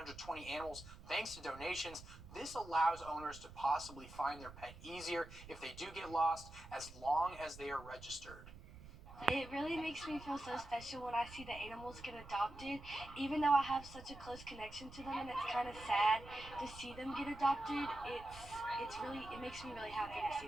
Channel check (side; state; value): right; noise; rumble, 16 dB below the sound